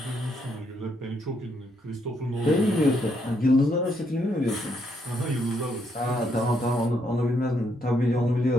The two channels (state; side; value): normal; both; correlation 0.75